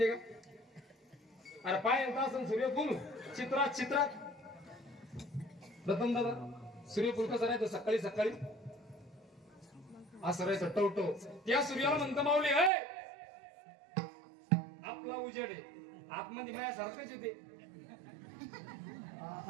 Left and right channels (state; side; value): drops out; left; at 12.7 s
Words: का? अरे पाय येत असं सूर्यफूल चित्रात प्रथम दादा सूर्यफूल कसं राहतं? सकाळी सकाळी असं राहायचं टवटो. त्या सूर्याला म्हणतं माऊली हे आपला उजेड आहे, आतमध्ये मायासारखंच येते.